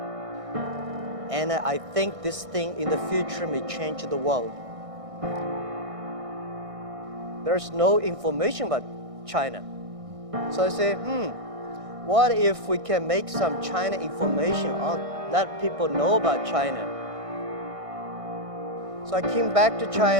And I think this thing in the future may change the world. There's no information about China. So I say, what if we can make some China information let people know about China? So I came back to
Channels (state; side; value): late; left; 1.6 ms